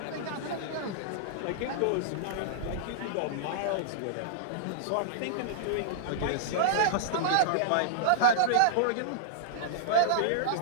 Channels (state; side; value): different; both; correlation -0.02